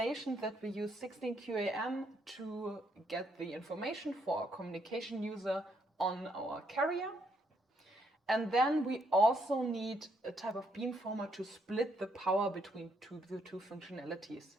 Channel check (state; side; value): normal; both; correlation 0.73